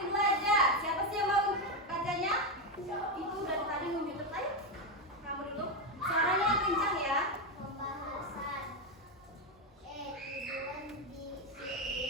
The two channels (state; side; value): normal; both; correlation 0.09